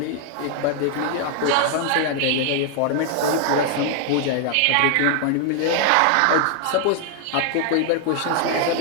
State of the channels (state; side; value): different; both; correlation 0.00